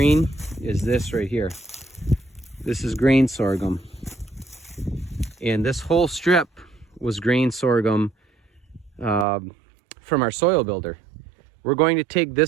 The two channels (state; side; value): drops out; left; at 9.2 s